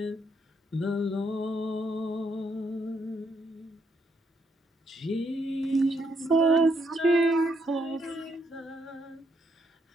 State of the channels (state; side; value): normal; both; correlation 0.75